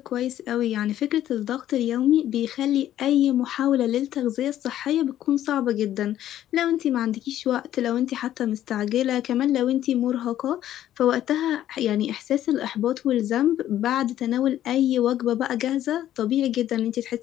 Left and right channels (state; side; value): quieter; right; 12.2 dB